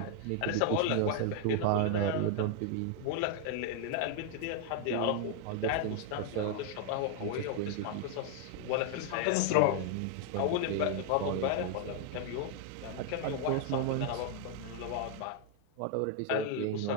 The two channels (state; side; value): different; both; correlation 0.00